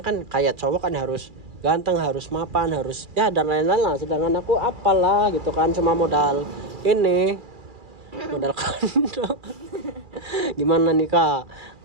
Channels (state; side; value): late; left; 2.4 ms